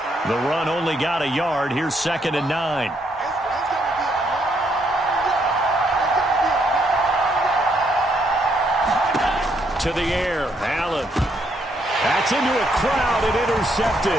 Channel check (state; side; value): normal; both; correlation 0.73